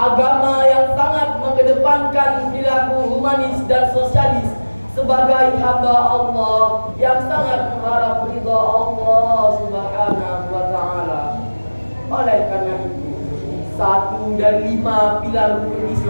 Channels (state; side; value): inverted; both; correlation -1.00